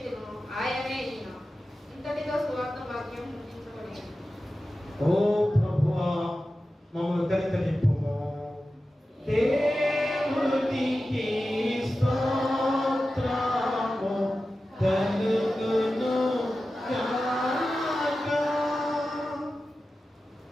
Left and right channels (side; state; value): both; normal; correlation 0.93